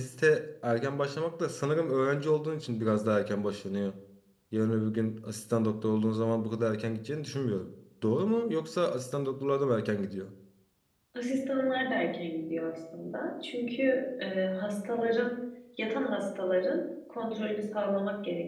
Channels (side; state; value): both; identical; correlation 1.00